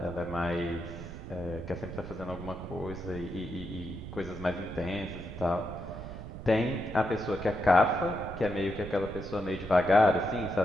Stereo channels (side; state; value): right; noise; rumble, 10 dB below the sound